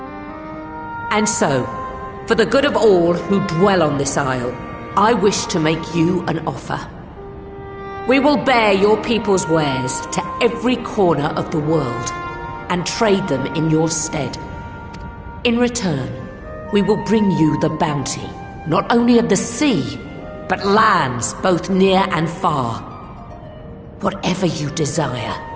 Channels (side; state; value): both; identical; correlation 1.00